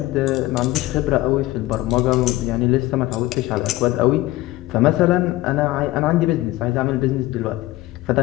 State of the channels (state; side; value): quieter; right; 17.7 dB